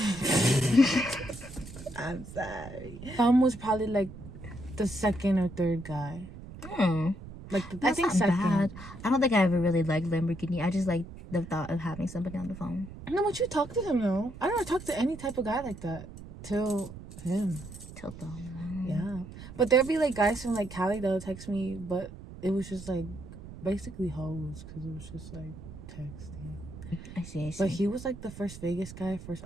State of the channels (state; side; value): noise; right; rumble, 14 dB below the sound